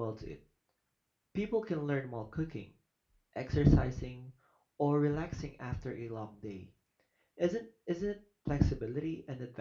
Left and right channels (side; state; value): both; identical; correlation 1.00